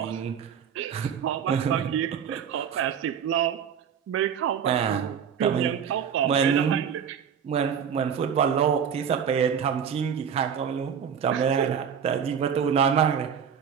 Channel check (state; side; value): quieter; left; 7.7 dB